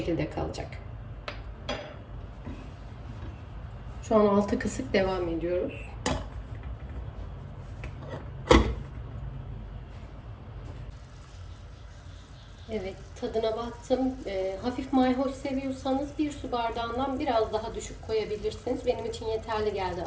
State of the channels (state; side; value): identical; both; correlation 1.00